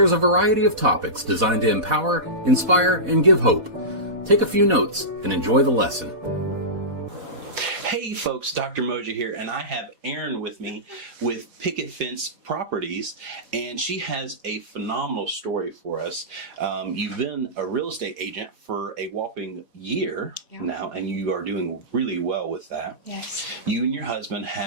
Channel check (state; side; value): late; left; 4.1 ms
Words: a variety of topics designed to empower, inspire, and give hope. Take a few notes and enjoy the lesson. Hey folks, Dr. Mosier here, and I have Erin with me with Picket Fence Properties, and she has a phenomenal story for us. You've been a real estate agent for a whopping year now, and you are doing really well with that. Yes. You and your husband